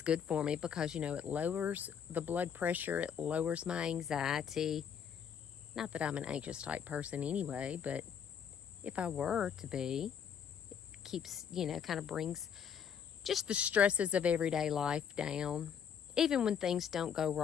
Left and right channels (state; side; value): quieter; right; 7.8 dB